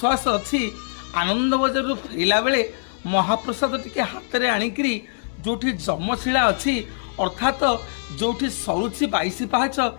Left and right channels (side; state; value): right; silent; digital silence